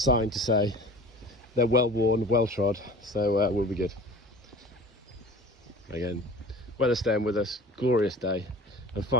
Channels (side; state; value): both; normal; correlation 0.42